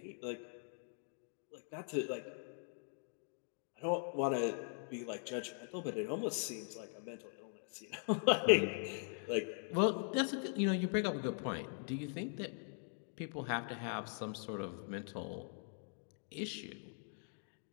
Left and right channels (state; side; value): silent; right; 50 dB below the other